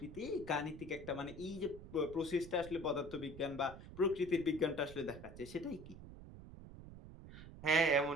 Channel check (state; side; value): noise; right; rumble, 14 dB below the sound